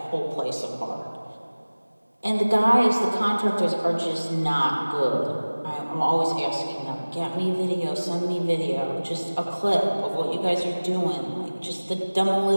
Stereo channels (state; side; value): inverted; both; correlation -1.00